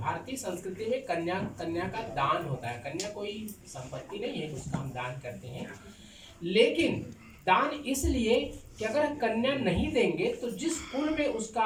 संस्कृति में कन्या का दान होता है। कन्या कोई संपत्ति नहीं है, उसका हम दान करते हैं, लेकिन दान इसलिए कि अगर कन्या नहीं देंगे तो जिस कुल में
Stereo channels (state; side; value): identical; both; correlation 1.00